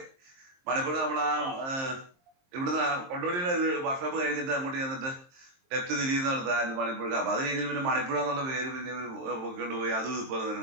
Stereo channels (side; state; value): left; late; 23 ms